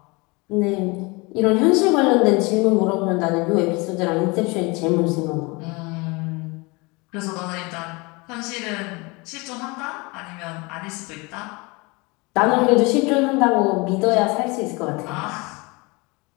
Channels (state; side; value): quieter; right; 26.4 dB